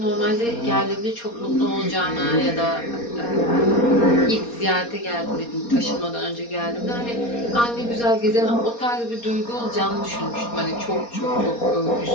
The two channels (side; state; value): right; late; 4.2 ms